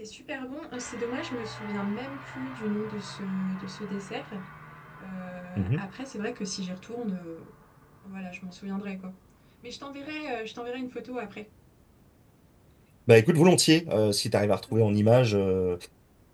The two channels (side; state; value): both; identical; correlation 1.00